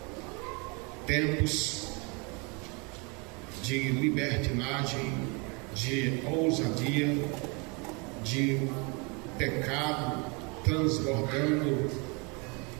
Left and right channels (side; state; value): left; quieter; 31.0 dB